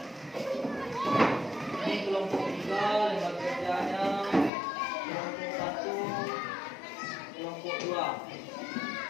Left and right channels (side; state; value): right; drops out; at 4.5 s